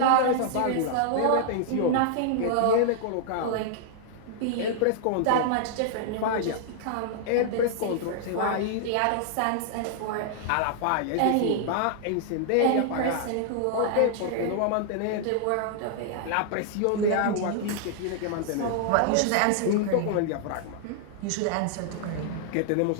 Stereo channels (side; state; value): both; different; correlation -0.01